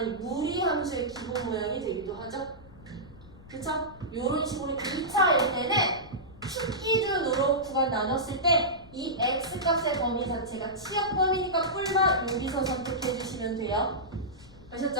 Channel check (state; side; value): noise; left; rumble, 21 dB below the sound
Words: 무리함수의 기본 모양이 되기도 하죠. 그쵸? 요런 식으로 2차일 때는 축 기준으로 구간 나눴을 때 이 x 값의 범위 자체가 치역 범위니까 뿔만 여기서 선택해 주시면 돼요.